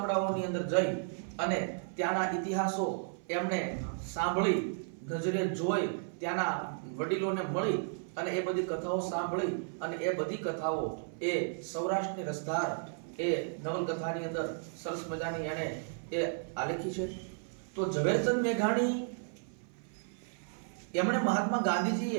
અંદર જઈ અને ત્યાંના ઇતિહાસો એમણે સાંભળી, નજરે જોઈ, ત્યાંના વડીલોને મળી અને એ બધી કથાઓ સાંભળી અને એ બધી કથાઓ એ સૌરાષ્ટ્રની રસધાર એ નવલકથાની અંદર સરસ મજાની એણે એ આલેખી છે. તો ઝવેરચંદ મેઘાણી એમણે મહાત્મા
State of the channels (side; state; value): left; silent; 55 dB below the other